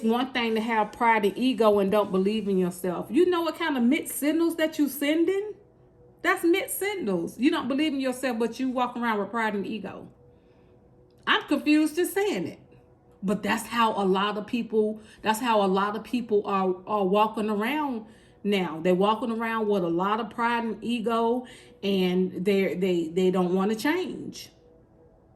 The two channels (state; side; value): identical; both; correlation 1.00